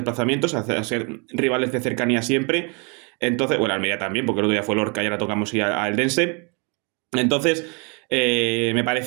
a ser rivales de cercanía siempre. Entonces, bueno, Almería también, porque el otro día fue Lorca y ahora tocamos ir a Eldense. Entonces, me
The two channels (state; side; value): quieter; left; 33.5 dB